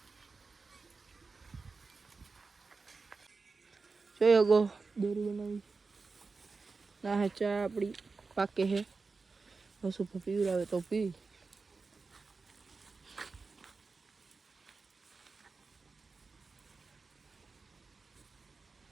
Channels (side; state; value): left; quieter; 4.3 dB